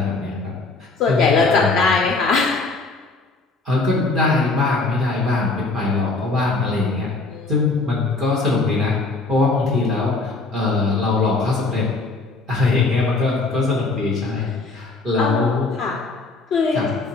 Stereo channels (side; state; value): right; quieter; 3.6 dB